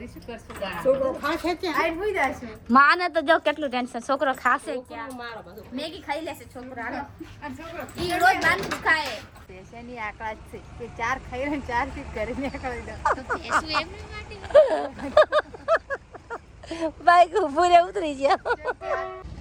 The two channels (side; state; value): both; identical; correlation 1.00